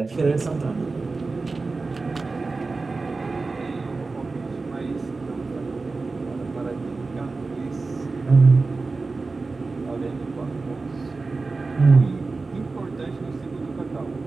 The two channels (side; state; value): left; quieter; 3.8 dB